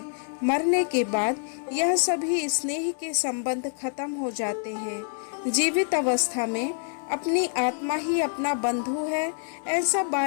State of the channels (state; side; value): silent; right; 61 dB below the other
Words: मरने के बाद यह सभी स्नेह के संबंध खत्म हो जाते हैं। जीवित अवस्था में अपनी आत्मा ही अपना बंधु है, ऐसा